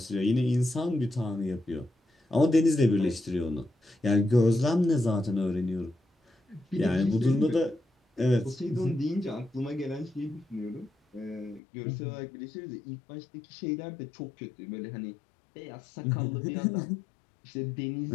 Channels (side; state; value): right; drops out; at 11.6 s